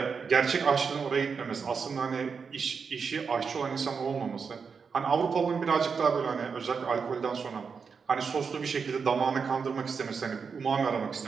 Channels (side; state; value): left; quieter; 5.7 dB